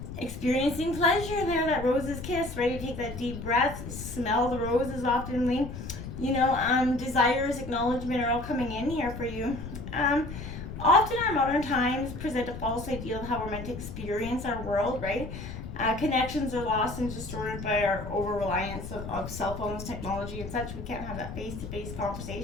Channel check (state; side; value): noise; left; rumble, 9 dB below the sound